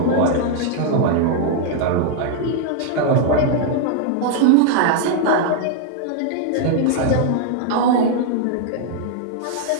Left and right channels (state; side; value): different; both; correlation 0.00